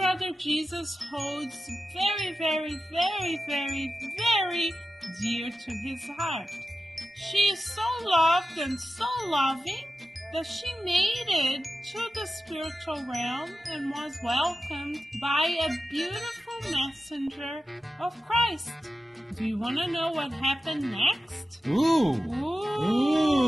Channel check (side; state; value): both; normal; correlation 0.93